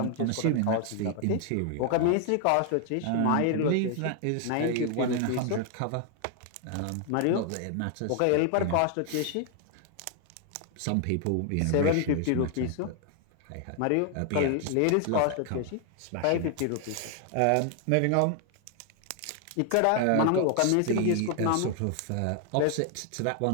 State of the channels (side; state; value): both; different; correlation 0.00